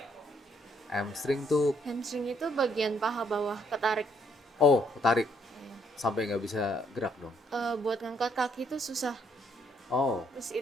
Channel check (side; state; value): both; normal; correlation 0.69